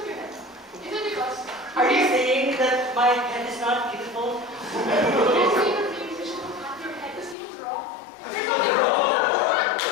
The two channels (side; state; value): right; drops out; at 7.4 s